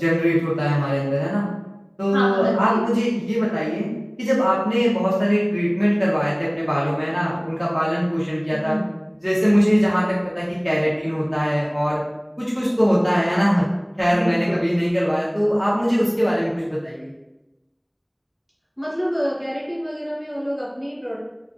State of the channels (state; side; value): identical; both; correlation 1.00